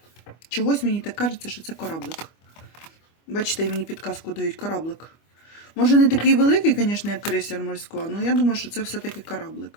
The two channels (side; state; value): right; late; 25 ms